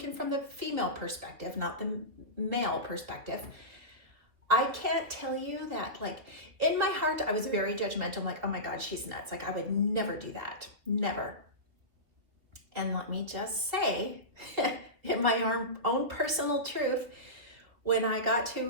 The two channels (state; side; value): late; left; 2.7 ms